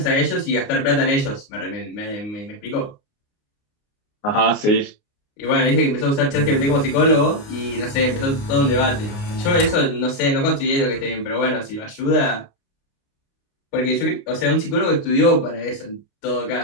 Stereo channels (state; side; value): late; right; 29 ms